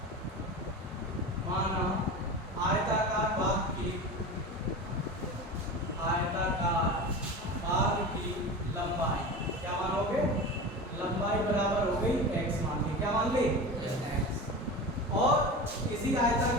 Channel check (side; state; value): both; normal; correlation 0.29